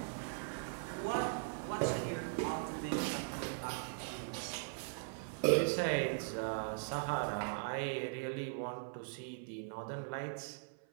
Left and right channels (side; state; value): left; silent; 51 dB below the other